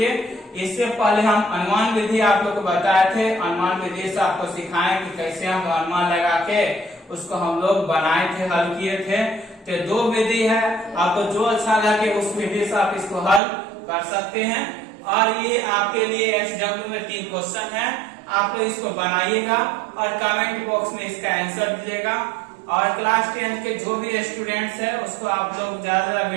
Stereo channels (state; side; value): drops out; left; at 13.4 s